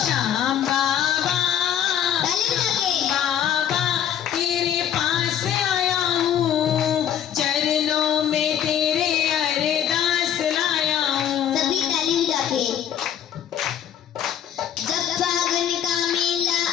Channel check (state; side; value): quieter; right; 9.7 dB